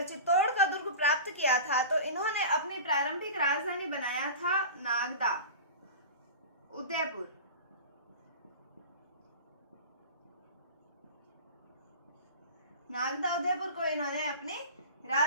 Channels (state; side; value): inverted; both; correlation -0.32